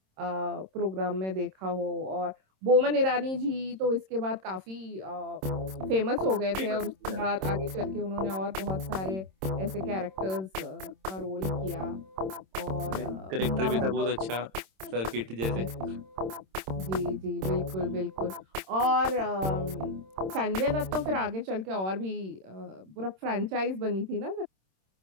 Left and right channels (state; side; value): late; left; 26 ms